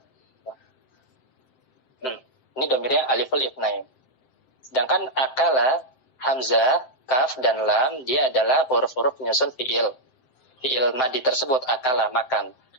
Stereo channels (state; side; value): late; right; 7.7 ms